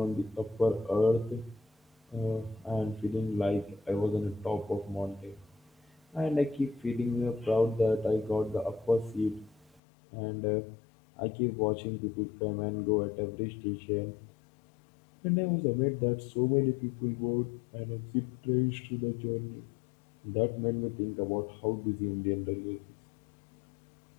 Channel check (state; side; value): drops out; right; at 9.8 s